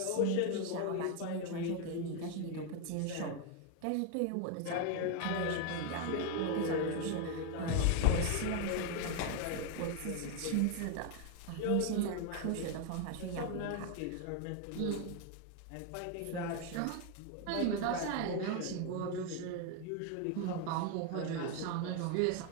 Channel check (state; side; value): different; both; correlation 0.01